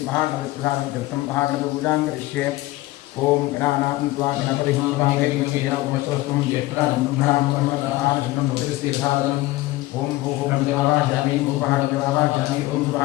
तीर्थं महागणपतिपूजां करिष्ये ओम गणानान्त्वा गणपतिं वागेन्द्रवियावमस्तुं ज्येष्ठराजं ब्रह्मणां ब्रह्मणाशनं भूतिस्थिरसादनम् ओम भूः देवावाहयामि भूभागदेवावाहयामि ओम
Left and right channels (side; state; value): right; quieter; 18.3 dB